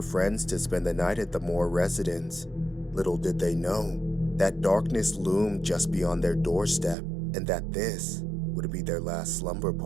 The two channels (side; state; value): left; drops out; at 7.0 s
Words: friends to spend the night at the Moore residence. Little did they know that darkness loomed just beyond their doorstep, and that this would be their last slumber